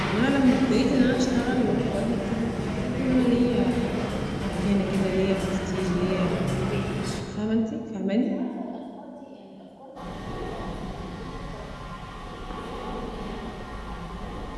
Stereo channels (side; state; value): both; identical; correlation 1.00